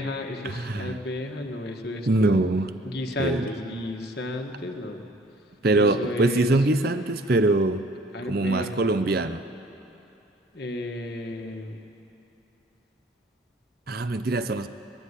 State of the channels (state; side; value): normal; both; correlation 0.55